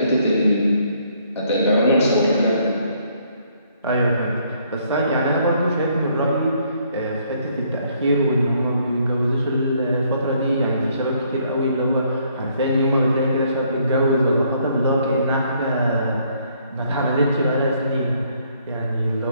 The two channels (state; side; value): inverted; both; correlation -0.67